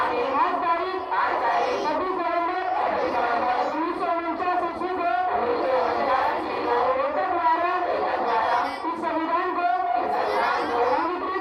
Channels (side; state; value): both; identical; correlation 1.00